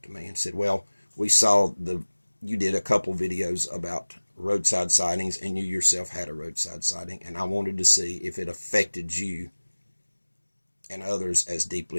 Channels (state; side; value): inverted; both; correlation -1.00